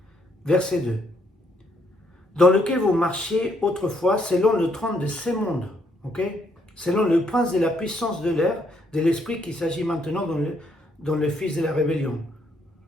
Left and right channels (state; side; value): normal; both; correlation 0.72